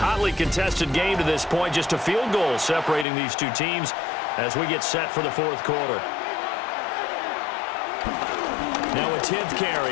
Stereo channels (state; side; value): drops out; right; at 3.1 s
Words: contested game to this point. Just a field goal separating these two teams as we get set for the 4th quarter. Now a 10th carry.